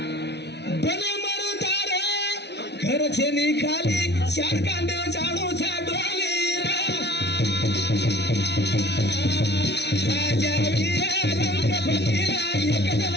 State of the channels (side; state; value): right; late; 0.50 ms